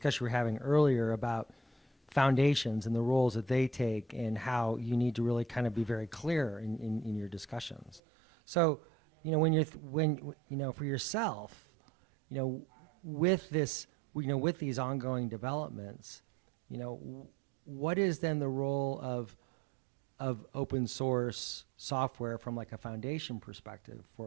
we were having earlier about foundations and the roles that they take and how you need to really kind of be very clear in your discussions. So, for yourself, with this, with these ongoing developments, what is then the role of open source software from like a foundation perspective for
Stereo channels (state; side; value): drops out; left; at 8.0 s